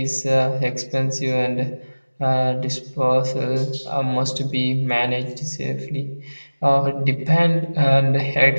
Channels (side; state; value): both; inverted; correlation -1.00